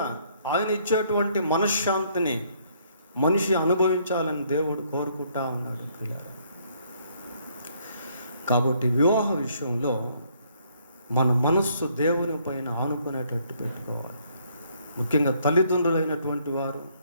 ఆయన ఇచ్చేటువంటి మనశ్శాంతిని మనిషి అనుభవించాలని దేవుడు కోరుకుంటా ఉన్నాడు పిల్లలు. కాబట్టి వివాహ విషయంలో మన మనస్సు దేవుని పైన ఆనుకునేటట్టు పెట్టుకోవాలి. ముఖ్యంగా తల్లిదండ్రులైనటువంటి వారు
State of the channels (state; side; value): inverted; both; correlation -0.67